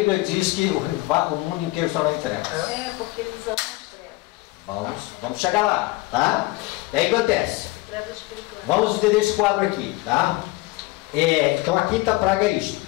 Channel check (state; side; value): quieter; right; 21.1 dB